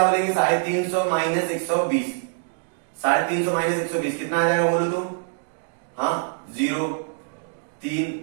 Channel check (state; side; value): silent; left; digital silence